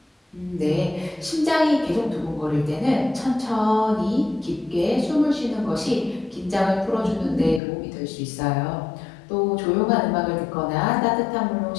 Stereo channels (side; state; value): right; drops out; at 7.6 s